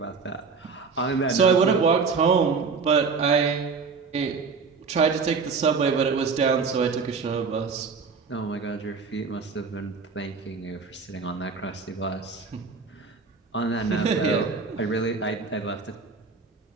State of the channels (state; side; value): quieter; left; 5.0 dB